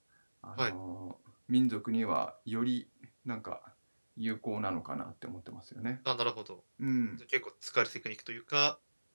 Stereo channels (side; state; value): both; inverted; correlation -1.00